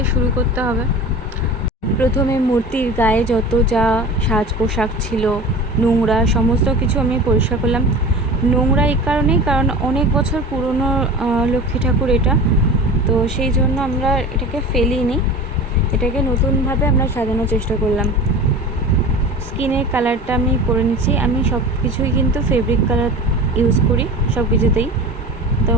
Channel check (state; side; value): normal; both; correlation 0.35